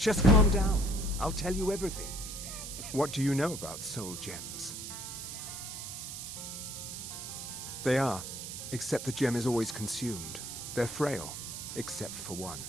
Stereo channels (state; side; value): noise; right; hiss, 8 dB below the sound